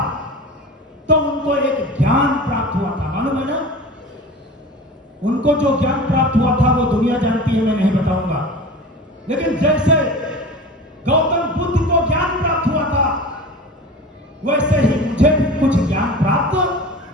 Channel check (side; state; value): both; normal; correlation 0.35